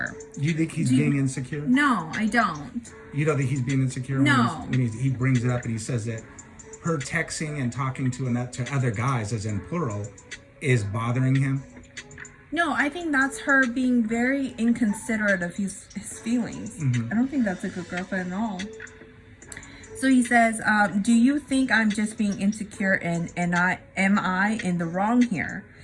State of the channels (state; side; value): identical; both; correlation 1.00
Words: Do you think he's being insecure? No, I don't. You don't think he's being insecure? No. When he brings it up and he says that her texting and talking to other guys, as in plural, is bothering him? No, I think that's her being very inconsiderate of his feelings. Mm-hmm. I don't think that's a good girlfriend at all. So he says, "Do you think I'm just being insecure and am I in the wrong here?